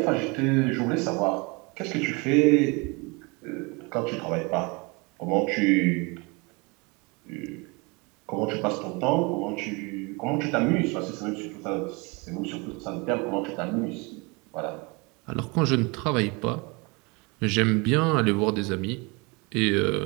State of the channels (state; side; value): quieter; left; 28.3 dB